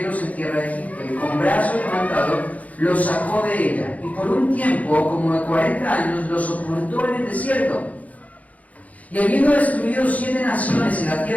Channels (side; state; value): right; late; 0.071 ms